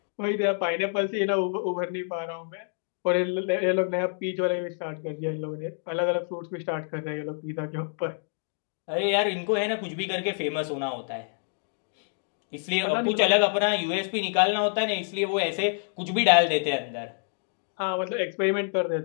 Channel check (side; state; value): right; silent; 60 dB below the other